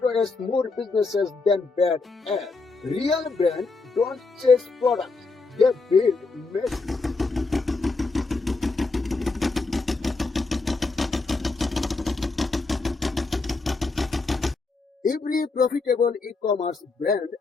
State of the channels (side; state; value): right; quieter; 3.8 dB